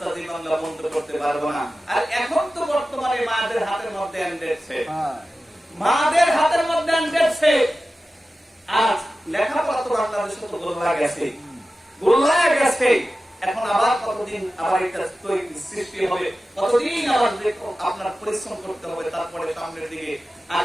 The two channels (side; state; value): both; normal; correlation 0.94